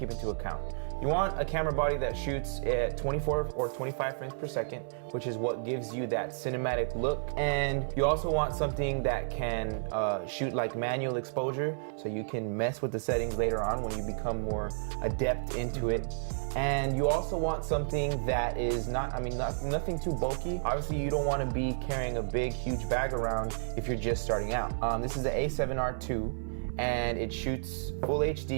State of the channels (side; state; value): left; silent; 57 dB below the other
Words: into account. You want a camera body that shoots at 24 or 25 frames per second, which is what gives you that cinematic look. And you also want something that can shoot like manual exposure, so you can mess with the settings later on when you become more adept into it. And you also want something that is nothing too bulky. Obviously, you don't want to be carrying a big, huge bag around if you're just starting out. This is the A7R2. And it shoots full